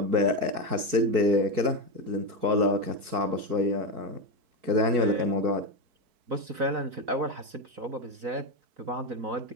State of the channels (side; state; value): left; late; 4.6 ms